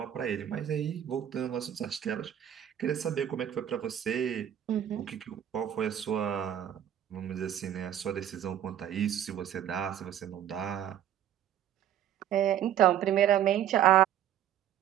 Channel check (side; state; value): left; quieter; 10.6 dB